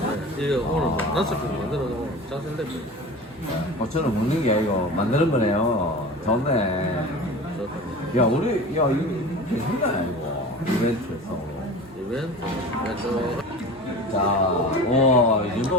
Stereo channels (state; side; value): normal; both; correlation 0.34